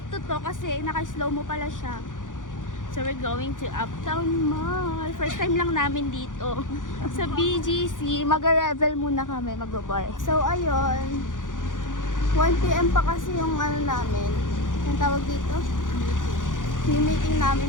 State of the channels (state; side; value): late; right; 0.88 ms